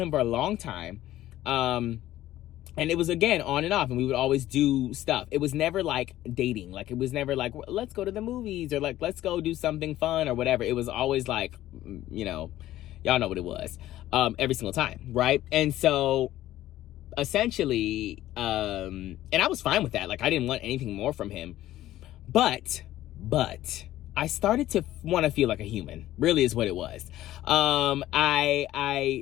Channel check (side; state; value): right; quieter; 14.3 dB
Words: him for a long time. And it was, again, on and off, and we would always do stuff. It was never like dating. Like it was never like, let's go to the movies, or like let's go do something fun or whatever. It was always like, y'all know what it was, every single time, right? And so essentially, and I was fine with that. Like I didn't want anything more from him, but I started to want to feel like a human, really is what it was.